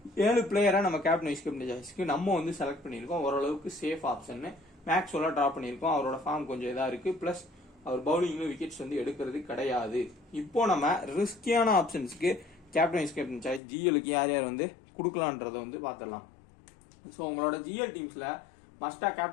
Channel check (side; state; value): right; drops out; at 13.6 s